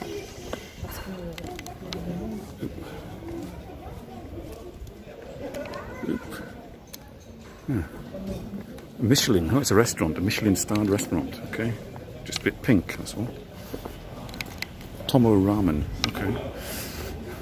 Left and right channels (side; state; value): both; identical; correlation 1.00